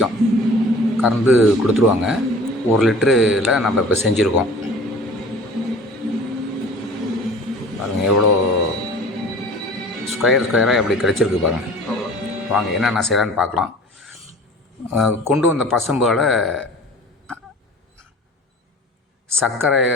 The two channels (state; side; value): normal; both; correlation 0.44